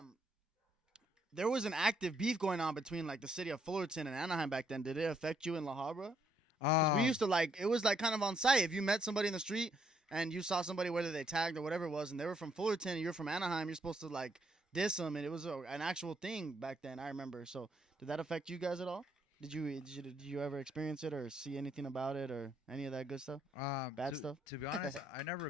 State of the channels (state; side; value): normal; both; correlation 0.71